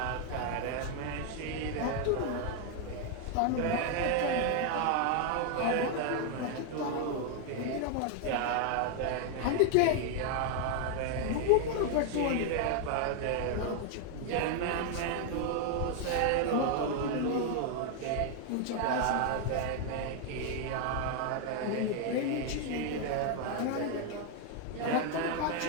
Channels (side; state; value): both; different; correlation 0.01